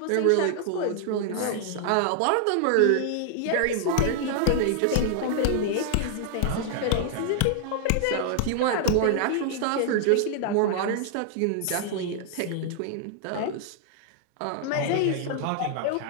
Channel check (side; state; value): both; different; correlation 0.00